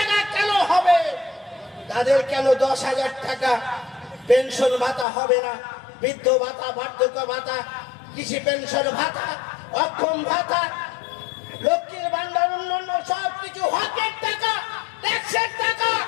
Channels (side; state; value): right; drops out; at 5.1 s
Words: কেন হবে? তাদের কেন ১০,০০০ টাকা পেনশন ভাতা হবে না? বৃদ্ধ ভাতা, বার্ধক্য ভাতা, কৃষি পেনশন ভাতা, অক্ষম ভাতা, লক্ষ্মীর ভান্ডার, অন্যান্য সবকিছু হকের টাকা, ট্যাক্সের টাকা।